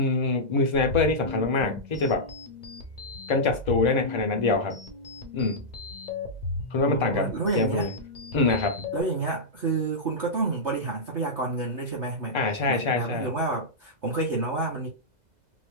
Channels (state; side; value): late; left; 2.0 ms